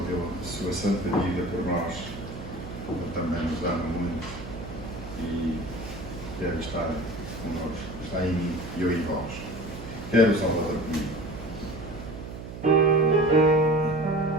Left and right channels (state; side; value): noise; right; hum, 11 dB below the sound